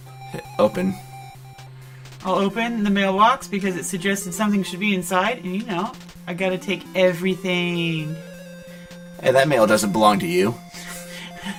hit open. I'll open the mailbox because it suggested something should be inside. And you know, I gotta take everything. Hey, that mail doesn't belong to you.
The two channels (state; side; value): identical; both; correlation 1.00